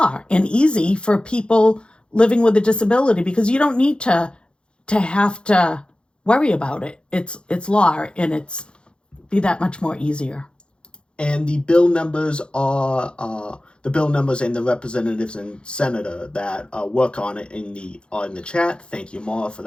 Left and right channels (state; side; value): late; right; 0.054 ms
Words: and easy for people living with a disability, because you don't need to have to worry about it. It's law, and it's be that much more easier. And the bill numbers are the bill numbers and the representatives and senator that work on it in the chat. Thank you, Maura, for